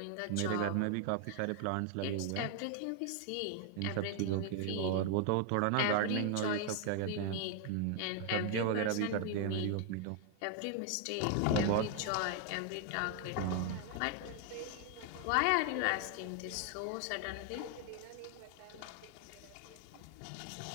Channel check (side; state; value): both; different; correlation 0.00